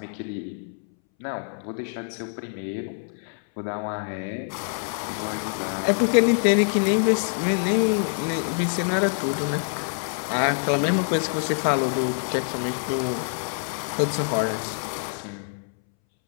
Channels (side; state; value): right; silent; 61 dB below the other